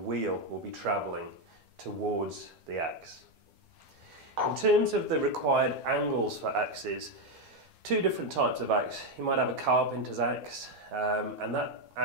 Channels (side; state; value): left; late; 12 ms